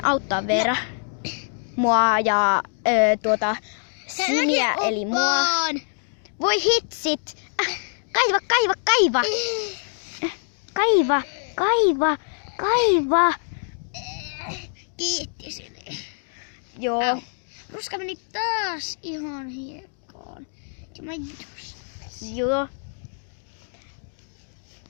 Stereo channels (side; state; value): right; silent; digital silence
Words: auttaa Veera? Mua ja Siniä eli mua. Voi hitsit! Kaiva! Kaiva! Kiitti sinne. Joo. Ruska meni taas ihan hiekkaan. Ja mä just. Joo.